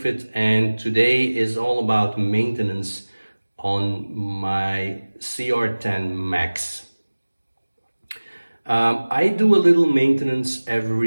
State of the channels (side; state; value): both; inverted; correlation -1.00